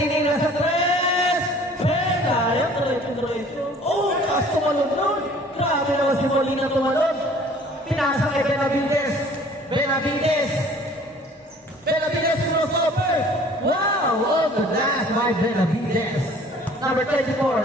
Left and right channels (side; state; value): both; normal; correlation 0.51